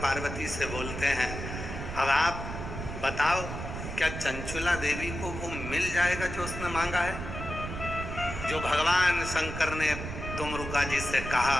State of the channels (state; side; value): noise; right; rumble, 7 dB below the sound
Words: पार्वती से बोलते हैं, अब आप बताओ क्या चंचुला देवी को वो मिल जाएगा जो उसने मांगा है? जो भगवान शंकर ने तुमरुका जी से